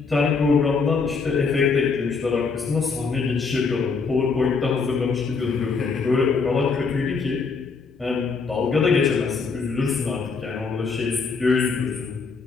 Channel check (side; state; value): right; quieter; 4.9 dB